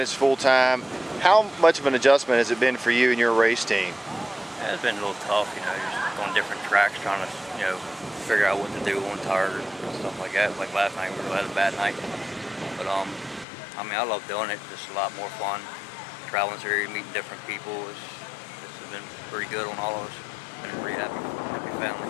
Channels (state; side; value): drops out; right; at 13.5 s